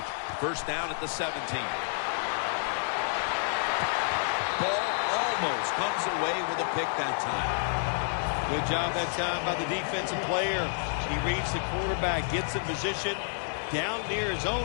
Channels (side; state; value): right; silent; digital silence